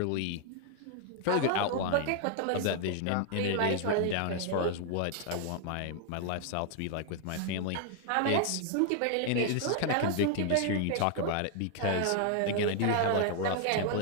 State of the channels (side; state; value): both; different; correlation 0.00